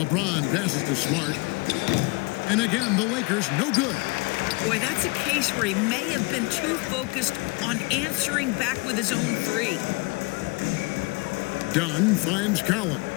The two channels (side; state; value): right; quieter; 27.6 dB